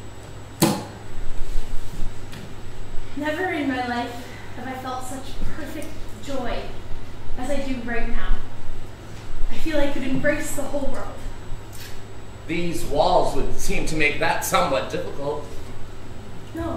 Never in my life have I felt such perfect joy as I do right now. I feel I could embrace the whole world. These walls would seem to make that somewhat difficult.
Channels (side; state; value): both; identical; correlation 1.00